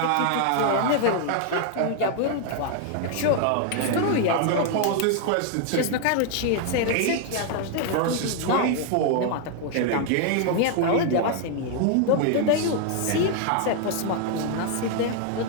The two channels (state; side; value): different; both; correlation 0.00